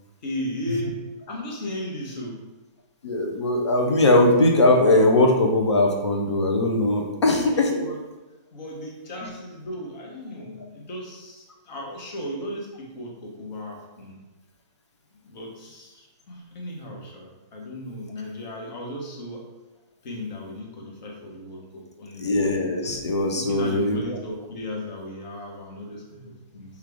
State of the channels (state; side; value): inverted; both; correlation -0.45